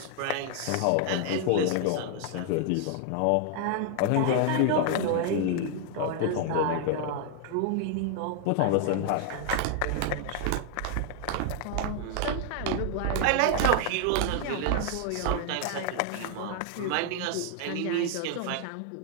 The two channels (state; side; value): different; both; correlation 0.00